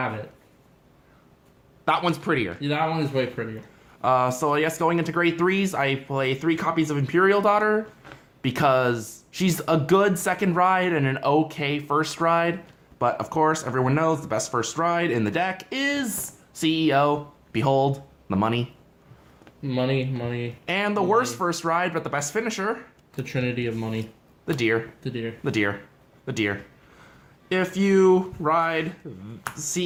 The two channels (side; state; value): both; identical; correlation 1.00